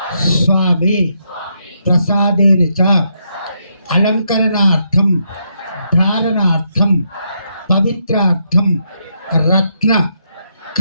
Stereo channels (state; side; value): inverted; both; correlation -0.79